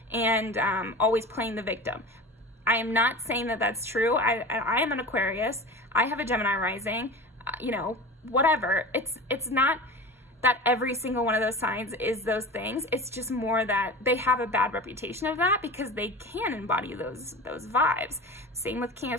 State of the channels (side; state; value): both; normal; correlation 0.33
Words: and always playing the victim. I am not saying that that's true. I am an Aquarius. I have a Gemini rising. You know, whatever. It's not that every single one of those signs is those things. It's just more that they have a bad reputation of that because they can embody those vibes. Same with King